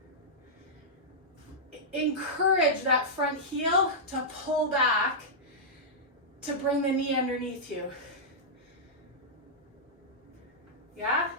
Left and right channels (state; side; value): normal; both; correlation -0.11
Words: Encourage that front heel to pull back to bring the knee underneath you. Yeah?